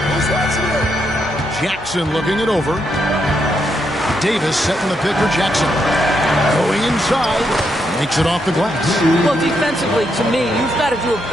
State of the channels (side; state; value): left; noise; hum, 22 dB below the sound